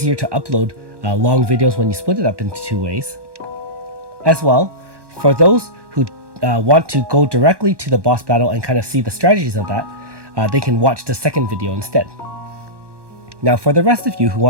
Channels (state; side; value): late; left; 1.1 ms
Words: to upload long videos when you split it up into 2 ways. As well, for those who want to go directly to the boss battle and kind of see the strategies of that, they can watch the second video instead. Now, for the rest of you who